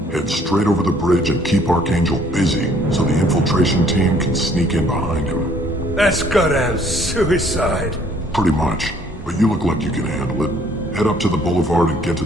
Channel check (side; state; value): both; normal; correlation 0.61